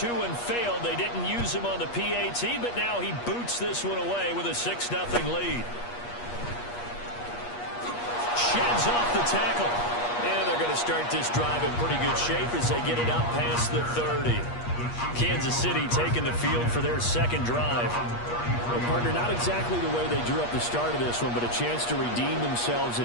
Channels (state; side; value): late; right; 8.4 ms